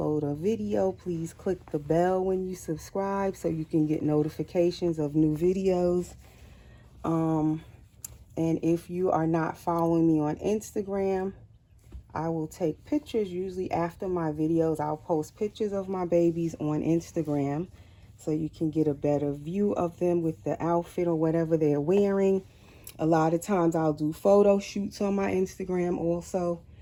a video, please click the bell when you subscribe so you can get notifications of new videos. And if you are not following me on Instagram, I will take pictures usually after my videos. I'll post pictures of my babies on Instagram so you can get a better view of them with the outfit or whatever they're wearing. A lot of times I'll do photo shoots on my Instagram also.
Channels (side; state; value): both; identical; correlation 1.00